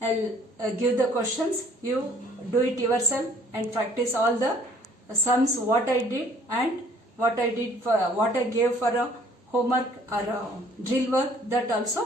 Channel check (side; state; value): both; normal; correlation 0.57